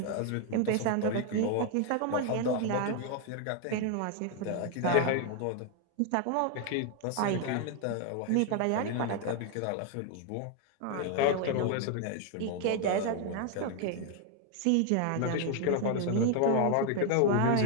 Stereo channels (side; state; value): both; different; correlation 0.01